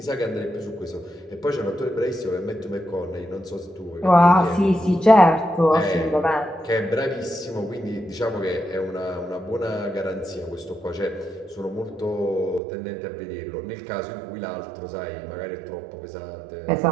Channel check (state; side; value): drops out; left; at 12.6 s